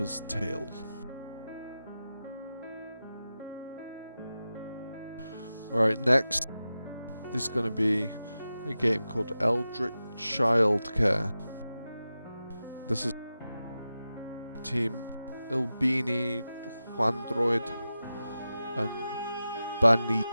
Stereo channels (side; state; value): both; inverted; correlation -0.93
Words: tale. Alright, next is going to be a game called Eldritch Childcare. This is Team Ilbini, Juandroid, and